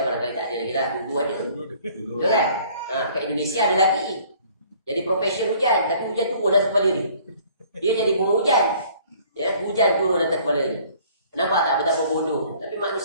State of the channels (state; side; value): inverted; both; correlation -0.56